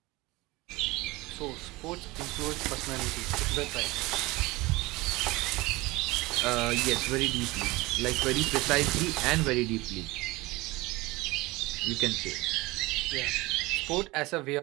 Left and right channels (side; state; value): left; quieter; 21.5 dB